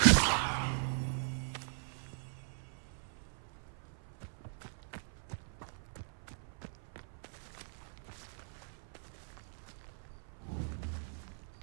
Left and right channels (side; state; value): left; silent; 51 dB below the other